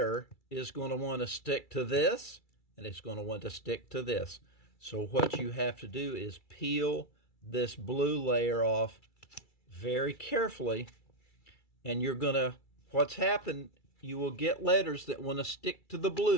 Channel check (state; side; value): late; right; 2.3 ms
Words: is going to want to stick to this, and it's going to want to stick to this. So what you have to do is peel this blue layer off very carefully, and you're going to, what's happened, you will get letters that want to stick to the